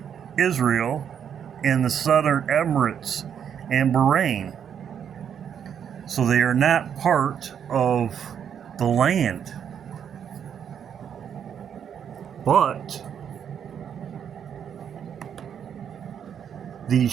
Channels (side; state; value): left; quieter; 8.3 dB